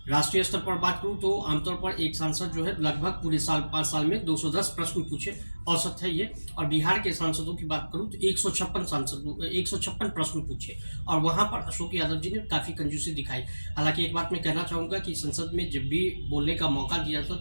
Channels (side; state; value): both; inverted; correlation -1.00